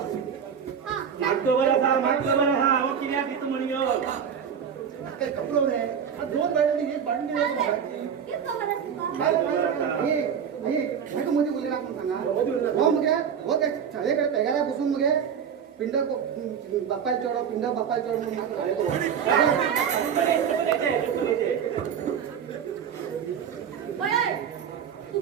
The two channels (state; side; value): quieter; left; 7.7 dB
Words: मागतो बरं हा मग किती तिथं म्हण घेऊ काय कपडो रे दोन गाडी हे बांधली मध्ये बोलले आपण सांगा हो मग हो काय शाळेकडे पेगारा बसून मग पिंड बापायला चढव पिंड बापायला चढव मग